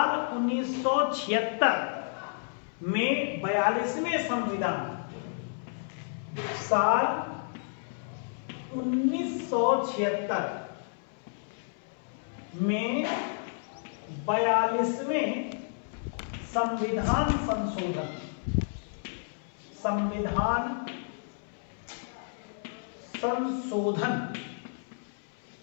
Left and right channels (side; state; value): right; silent; 57 dB below the other